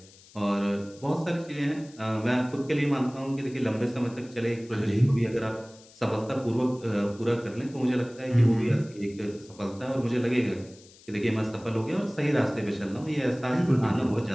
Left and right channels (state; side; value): noise; left; hiss, 24 dB below the sound